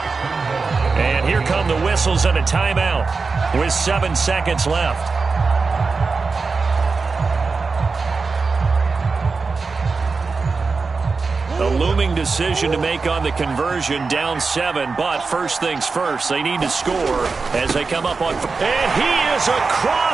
And here come the whistles and a timeout with 7 seconds left. A looming decision to make on the conversion, down 7, but first things first, they need to score as they come up on. And he is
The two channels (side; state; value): left; quieter; 4.4 dB